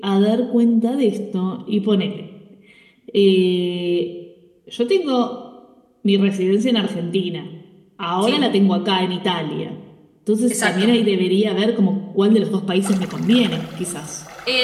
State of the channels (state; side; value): identical; both; correlation 1.00